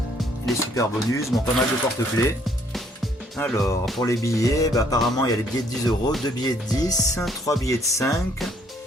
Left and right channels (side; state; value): both; normal; correlation 0.65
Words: les super bonus, bon, pas mal de porte-clés. Alors pour les billets, bah, apparemment il y a les billets de 10 €, 2 billets de 10, 3 billets de 5,